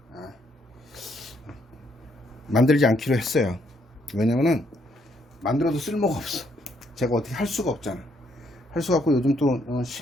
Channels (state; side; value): normal; both; correlation 0.72